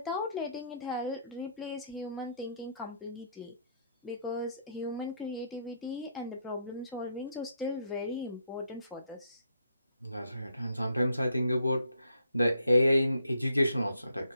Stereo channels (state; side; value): inverted; both; correlation -0.72